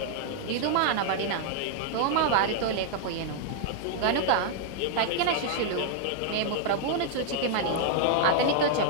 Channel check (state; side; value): different; both; correlation -0.01